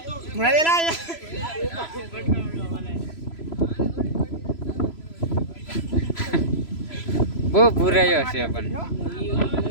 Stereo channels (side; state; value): right; late; 3.0 ms